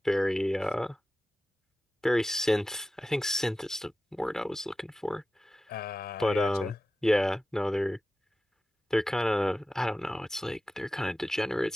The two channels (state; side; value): normal; both; correlation 0.95